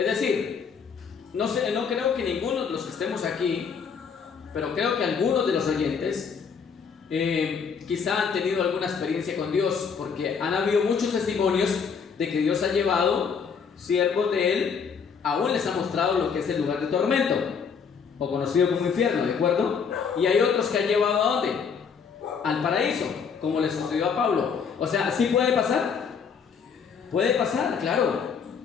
decir, no creo que ninguno de los que estemos aquí, pero creo que algunos de los oyentes quizá han tenido alguna experiencia con Dios, porque han habido muchos testimonios de que Dios ha llevado siervos de Él, aún les ha mostrado lo que es el lugar de tormento, o conocido como infierno, ¿de acuerdo? Y hay otros que han llevado ¿a dónde? Al paraíso, como le sucedió a Pablo. O sea, ¿sí puede pasar? Puede pasar, claro,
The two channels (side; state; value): right; quieter; 6.3 dB